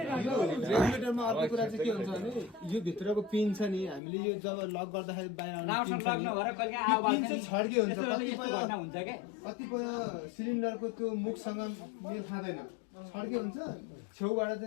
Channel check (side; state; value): right; drops out; at 4.0 s